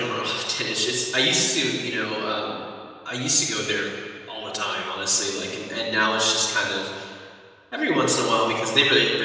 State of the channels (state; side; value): identical; both; correlation 1.00